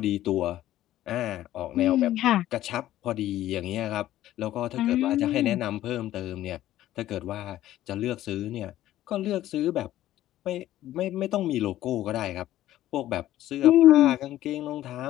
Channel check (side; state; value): right; quieter; 13.8 dB